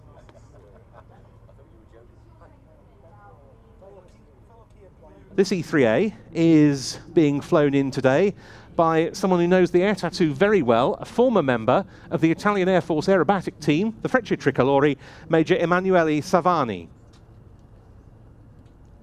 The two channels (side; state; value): both; identical; correlation 1.00